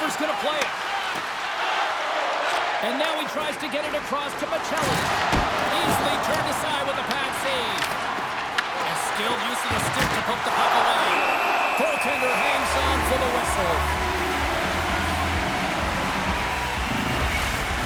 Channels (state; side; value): identical; both; correlation 1.00